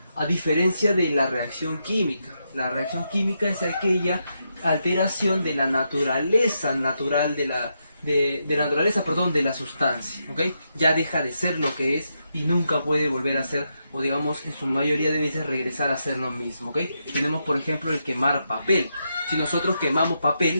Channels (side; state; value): both; inverted; correlation -0.83